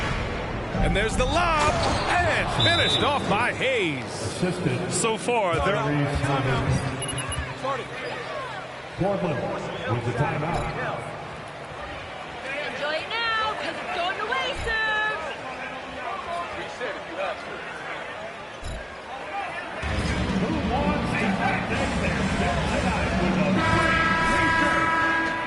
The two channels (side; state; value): both; identical; correlation 1.00